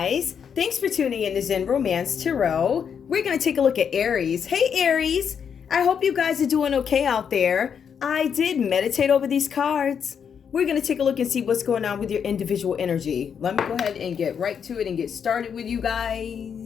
thanks for tuning in to Zen Romance Tarot. We're going to take a look at Aries. Hey Aries, I hope you guys are doing okay out there. I did meditate over these cards. We're going to take a look and see what's going on with your individual energy. Let me go ahead and get right to it and get started with you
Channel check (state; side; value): quieter; right; 7.3 dB